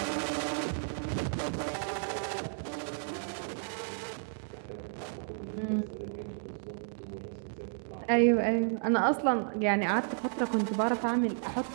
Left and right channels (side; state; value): left; silent; digital silence